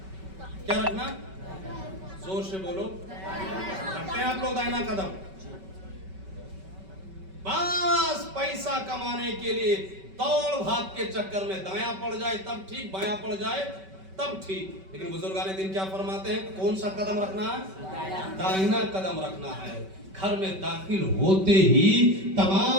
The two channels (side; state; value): left; late; 5.2 ms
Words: کیا رکھنا؟ زور سے بولو. رکھتے ہیں آپ لوگ داہنا قدم؟ بس پیسہ کمانے کے لیے دوڑ بھاگ کے چکر میں دایاں پڑ جائے تب ٹھیک, بایاں پڑ جائے تب ٹھیک. لیکن بزرگان دین کیا فرماتے ہیں؟ کون سا قدم رکھنا ہے؟ داہنا قدم رکھنا ہے. گھر میں داخل ہوتے ہی